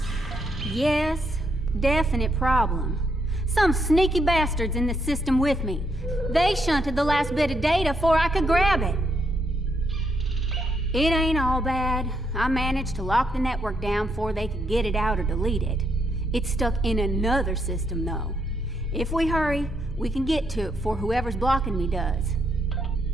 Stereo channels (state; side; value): normal; both; correlation 0.77